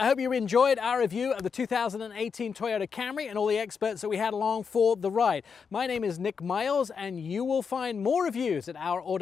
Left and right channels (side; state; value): right; quieter; 6.0 dB